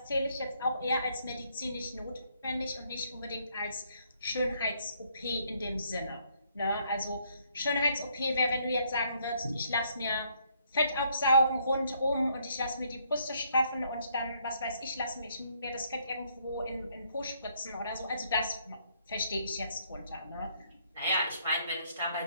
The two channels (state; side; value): inverted; both; correlation -0.70